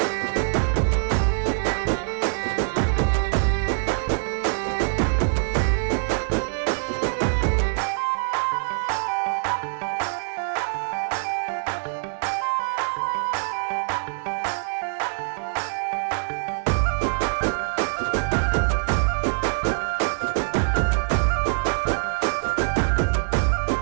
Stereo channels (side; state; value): left; silent; digital silence